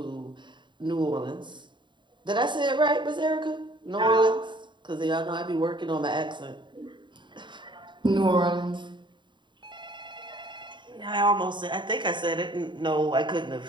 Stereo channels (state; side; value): late; left; 0.23 ms